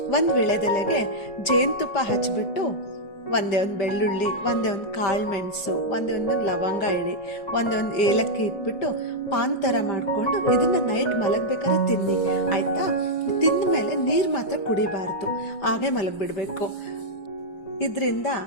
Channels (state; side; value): late; right; 5.2 ms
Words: ಒಂದು ವಿಳೆದೆಲೆಗೆ ಜೇನುತುಪ್ಪ ಹಚ್ಬಿಟ್ಟು ಒಂದೇ ಒಂದು ಬೆಳ್ಳುಳ್ಳಿ, ಒಂದೇ ಒಂದು ಕಾಳು ಮೆಣಸು, ಒಂದೇ ಒಂದು ಲವಂಗ ಇಡಿ, ಒಂದೇ ಒಂದು ಏಲಕ್ಕಿ ಇಟ್ಬಿಟ್ಟು ಪಾನ್ ಥರ ಮಾಡಿಕೊಂಡು ಇದನ್ನು ನೈಟ್ ಮಲಗಬೇಕಾದ್ರೆ ತಿನ್ನಿ, ಆಯಿತಾ? ತಿಂದ ಮೇಲೆ ನೀರು ಮಾತ್ರ ಕುಡಿಬಾರ್ದು, ಹಾಗೆ ಮಲಗಿಬಿಡಬೇಕು. ಇದರಿಂದ